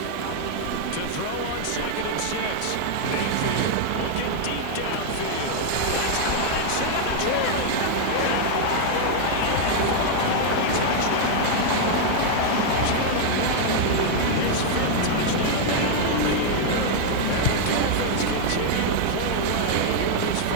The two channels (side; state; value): both; different; correlation 0.00